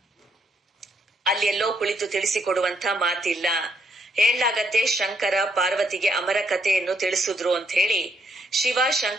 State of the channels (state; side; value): normal; both; correlation 0.74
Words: ಅಲ್ಲೆಲ್ಲೋ ಕುಳಿತು ತಿಳಿಸಿಕೊಡುವಂತ ಮಾತಿಲ್ಲ. ಹೇಳಲಾಗತ್ತೆ, ಶಂಕರ ಪಾರ್ವತಿಗೆ ಅಮರ ಕಥೆಯನ್ನು ತಿಳಿಸಿದ್ರು ಅಂತ ಹೇಳಿ ಶಿವ